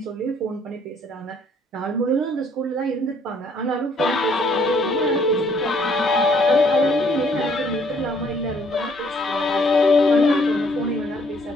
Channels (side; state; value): both; normal; correlation 0.64